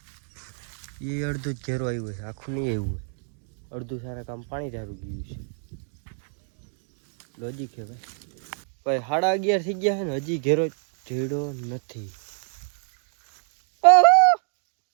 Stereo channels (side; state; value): left; silent; 60 dB below the other